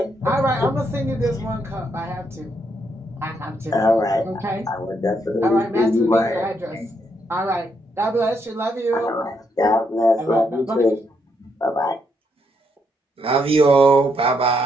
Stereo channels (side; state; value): both; normal; correlation 0.76